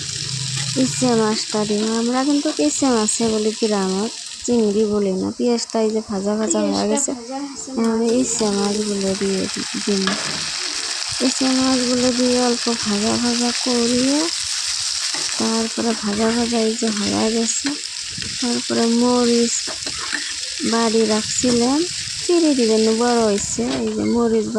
ইচ্ছে মাছটা দিব। আমরা কিন্তু ইচ্ছে মাছে বলি, গ্রামের চিংড়ি বলি না। পেঁয়াজটা এই যে ভাজা ভাজা হয়ে গেছে, এখন ইচ্ছে মাছগুলো দিয়ে দিন। ইচ্ছে মাছগুলো দিয়ে অল্প ভাজা ভাজা করিয়ে তারপরে ভাজা ভাজা এই যে হয়ে গেছে, তারপরে মরিচ বাড়ি রাখছিলাম, চিড়ে দিবেন, বড় হয়েছে। এই যে মরিচ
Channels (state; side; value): identical; both; correlation 1.00